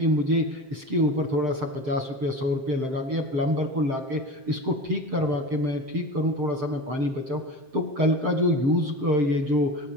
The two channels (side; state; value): left; late; 7.6 ms